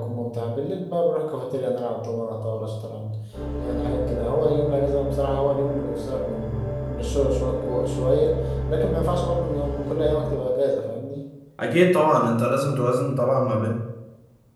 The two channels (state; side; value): identical; both; correlation 1.00